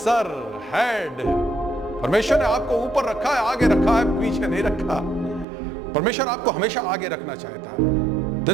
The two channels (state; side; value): drops out; left; at 5.5 s